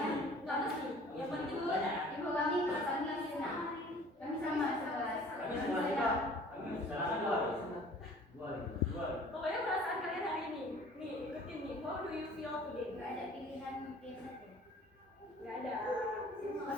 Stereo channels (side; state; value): both; normal; correlation 0.50